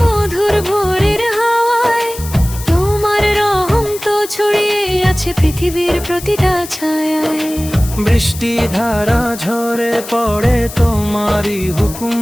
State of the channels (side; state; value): left; noise; hiss, 13 dB below the sound